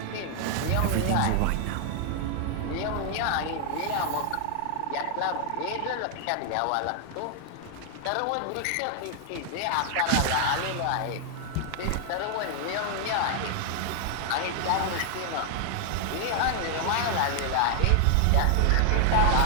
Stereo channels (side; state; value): both; different; correlation 0.00